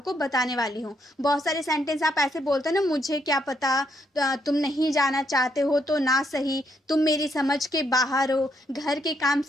को बताने वाली हूँ। बहुत सारे सेंटेंस आप ऐसे बोलते हैं ना, मुझे क्या पता, तुम नहीं जाना चाहते हो तो ना सही, तुम मेरी समझ के बाहर हो, घर के काम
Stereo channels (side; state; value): both; normal; correlation 0.75